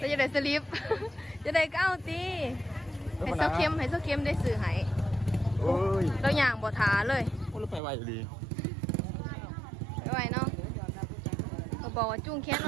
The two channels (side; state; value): left; drops out; at 7.8 s